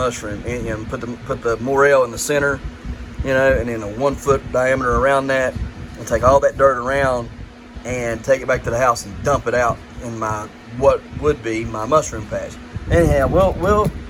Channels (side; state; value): both; identical; correlation 1.00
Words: and put the morel in the center, and then a 1 foot diameter around that, and take all that dirt around and take it back to the house and dump it out in what would be my mushroom patch. Anyhow,